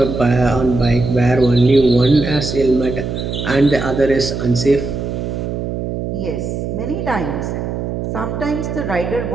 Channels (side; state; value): right; noise; hum, 4 dB below the sound